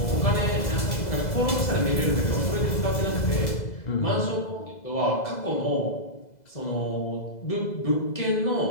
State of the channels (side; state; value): right; late; 2.0 ms